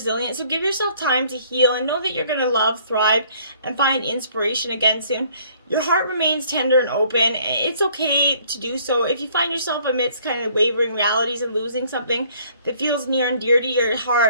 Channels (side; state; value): both; inverted; correlation -0.60